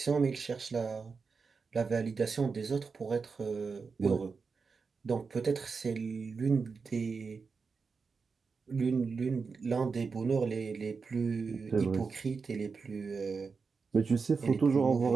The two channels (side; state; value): left; quieter; 5.0 dB